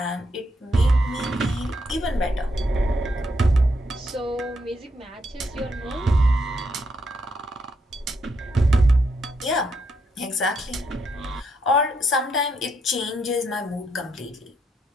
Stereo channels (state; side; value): normal; both; correlation 0.77